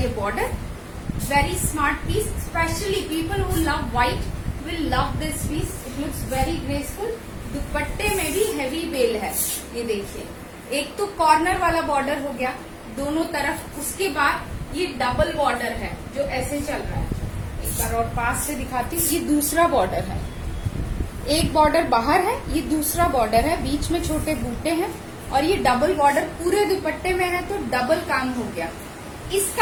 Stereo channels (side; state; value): both; identical; correlation 1.00